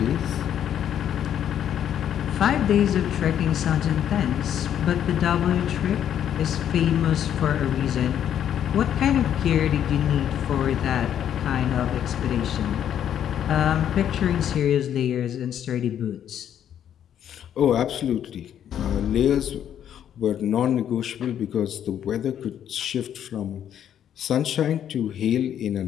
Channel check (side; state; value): right; quieter; 9.9 dB